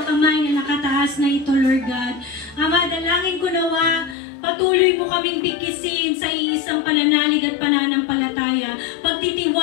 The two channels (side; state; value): right; drops out; at 4.2 s